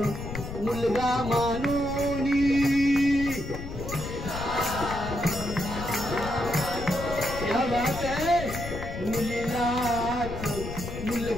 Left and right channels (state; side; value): noise; left; rumble, 8 dB below the sound